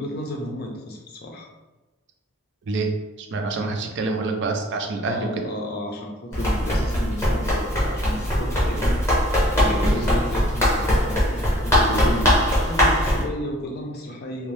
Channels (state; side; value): normal; both; correlation 0.53